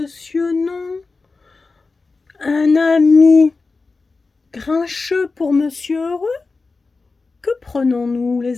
non, un ami grincheux pour monsieur heureux? Que prenons-nous,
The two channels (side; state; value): right; quieter; 4.0 dB